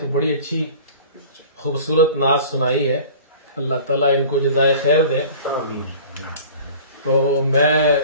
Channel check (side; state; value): both; inverted; correlation -0.43